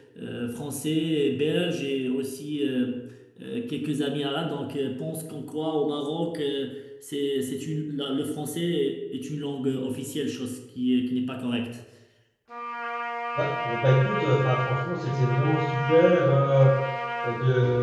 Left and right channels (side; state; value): both; identical; correlation 1.00